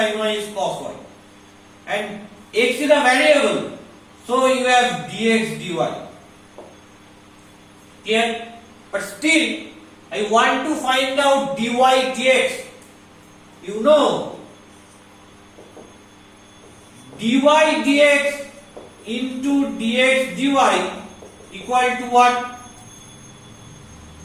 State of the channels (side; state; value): both; identical; correlation 1.00